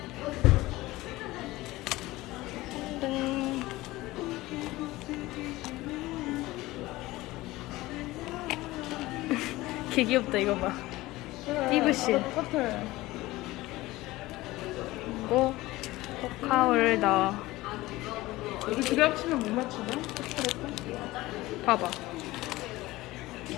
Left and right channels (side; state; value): right; quieter; 18.7 dB